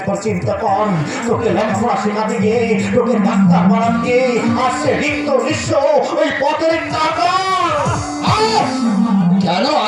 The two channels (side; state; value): both; identical; correlation 1.00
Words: চিন্তা কর। তোকে লেখাপড়া শেখাতে গিয়ে, তোকে ডাক্তার বানাতে গিয়ে আসছে রিক্ত নিঃস্ব ওই পথের টাকা। কেন